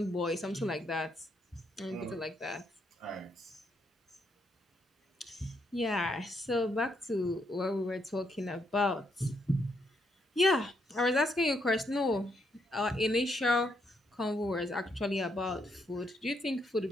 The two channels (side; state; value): both; normal; correlation 0.76